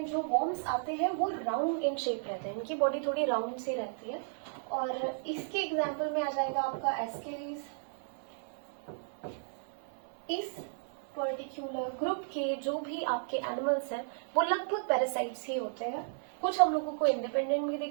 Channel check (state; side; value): silent; left; 55 dB below the other